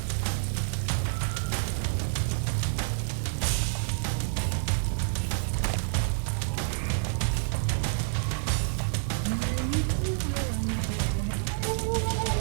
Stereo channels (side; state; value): left; silent; digital silence